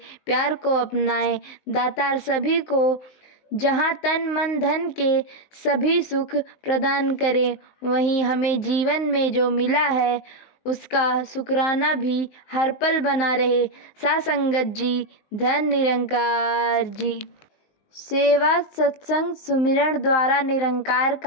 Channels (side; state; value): right; late; 19 ms